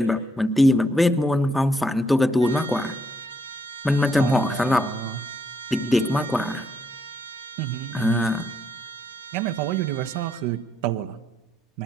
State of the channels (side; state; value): both; normal; correlation 0.75